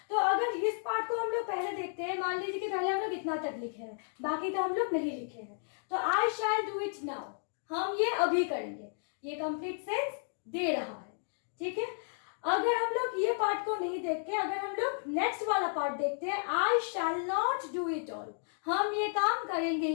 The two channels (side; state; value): right; silent; digital silence